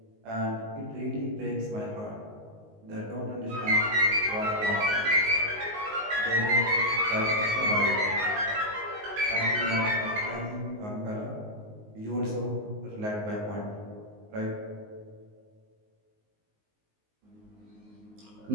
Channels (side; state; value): left; late; 19 ms